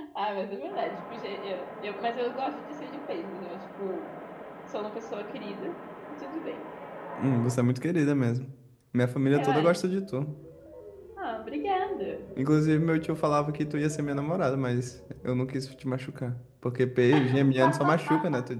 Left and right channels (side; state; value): both; identical; correlation 1.00